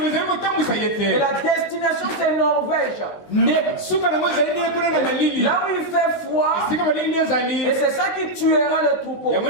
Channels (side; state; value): right; late; 19 ms